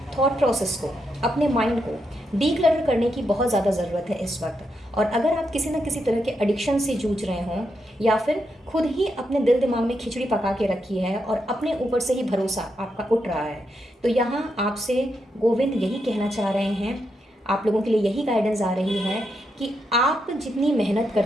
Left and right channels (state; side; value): normal; both; correlation 0.82